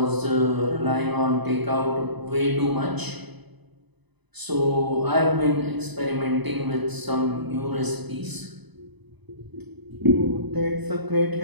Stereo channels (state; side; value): late; left; 1.0 ms